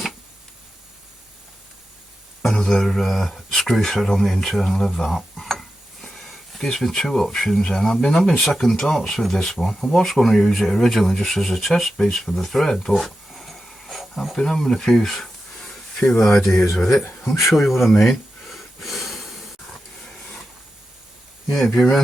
another screw thread on the internal of that. It gives me two options then. I've been having second thoughts with this one. I was going to use it originally just as a test piece for the thread, but I've been having a few ideas with it. I'll show you what I mean. Yeah, if you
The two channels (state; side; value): normal; both; correlation 0.91